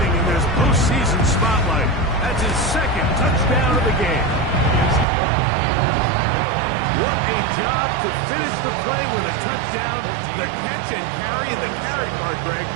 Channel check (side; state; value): left; drops out; at 5.1 s